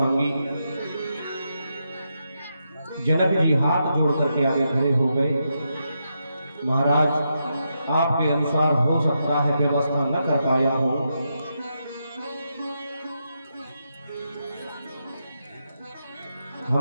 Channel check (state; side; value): inverted; both; correlation -0.84